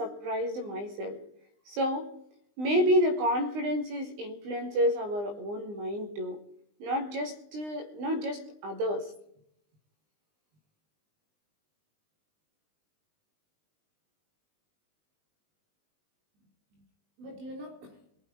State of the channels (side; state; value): left; late; 20 ms